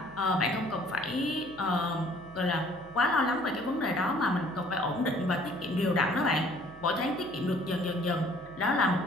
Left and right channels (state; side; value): noise; right; hum, 22 dB below the sound